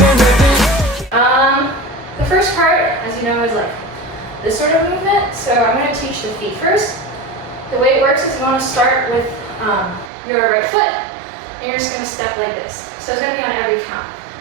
rip it. The first part, as you know, is like this sort of movement. So I'm going to teach the feet first. The way it works is you want to start with your right foot, and you're just going to step like this. So it's going to be on every count.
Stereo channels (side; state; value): left; drops out; at 10.1 s